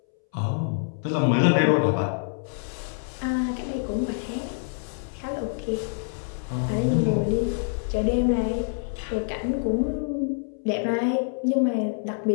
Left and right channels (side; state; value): right; silent; 61 dB below the other